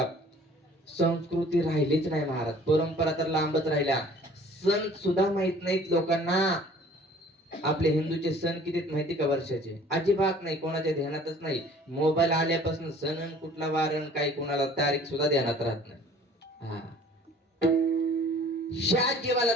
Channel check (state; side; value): normal; both; correlation 0.51